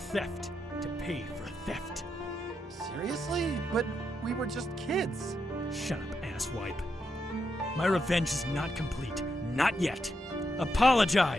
to pay for a theft. Seriously? But we were just kids. Shut up, asswipe. My revenge is not complete. Not yet.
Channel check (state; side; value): normal; both; correlation 0.83